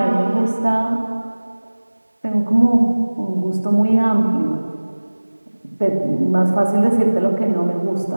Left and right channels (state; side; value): inverted; both; correlation -1.00